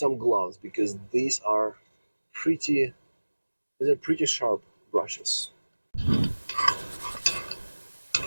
gloves because these are pretty sharp brushes.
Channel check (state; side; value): inverted; both; correlation -1.00